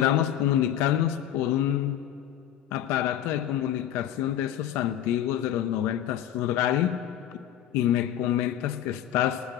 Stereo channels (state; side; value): quieter; right; 11.0 dB